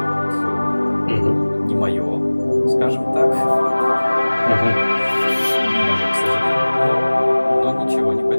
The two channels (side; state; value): both; inverted; correlation -1.00